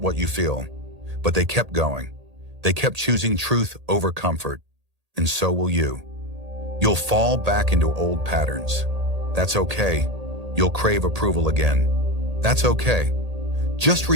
what you feel, but they kept going. They kept choosing truth over comfort, and so will you. You'll fall back into old patterns. That's okay. You'll crave approval again. That's okay. Just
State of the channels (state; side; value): late; left; 1.8 ms